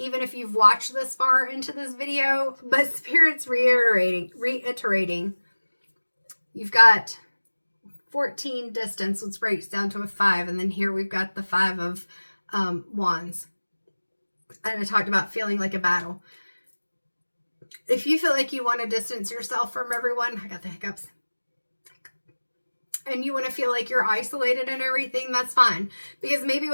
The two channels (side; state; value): both; inverted; correlation -1.00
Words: if you've watched this far into this video, but Spirit's reiterating. You've got 14 distance, which breaks down to a 5. And then here we've got the 5 of wands. And I talked about feeling like a battle. If you feel like you want to distance yourself from everyone, I got the hiccups. And you want to feel like you're isolated and everything, that's fine. Because maybe